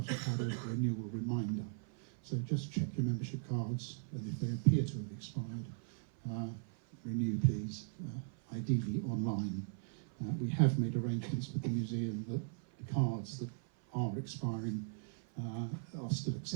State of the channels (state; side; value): silent; left; 52 dB below the other